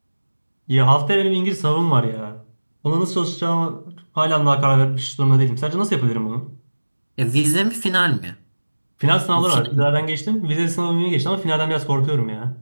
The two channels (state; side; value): inverted; both; correlation -1.00